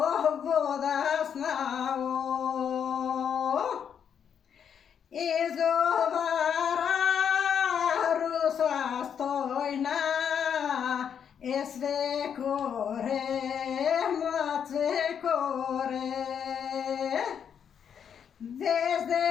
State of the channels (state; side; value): quieter; right; 8.0 dB